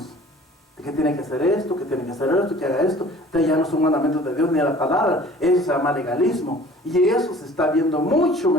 Que tiene que hacer esto, que tiene que hacer esto, que haga esto. Entonces ya no son mandamientos de Dios ni de la palabra. Eso se llama legalismo. Y eso se está viendo mucho,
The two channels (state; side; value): normal; both; correlation 0.48